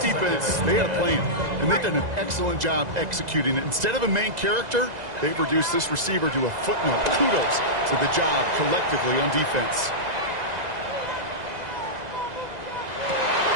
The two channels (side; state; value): left; late; 2.0 ms